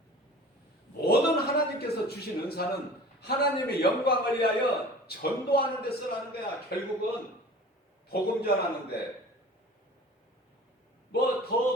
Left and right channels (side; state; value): both; normal; correlation 0.42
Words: 모든 하나님께서 주신 은사는 하나님의 영광을 위하여 전도하는 데 쓰라는 거야. 결국은 복음 전하는데